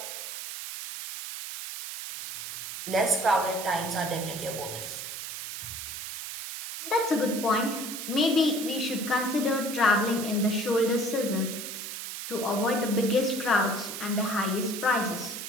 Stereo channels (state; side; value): noise; right; hiss, 7 dB below the sound